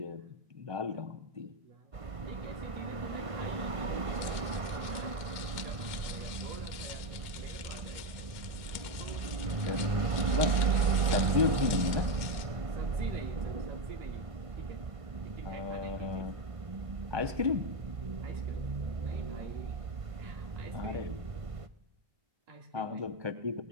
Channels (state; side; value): late; left; 1.5 ms